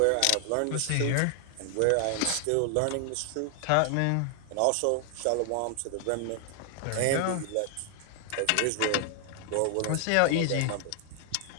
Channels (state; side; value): different; both; correlation 0.00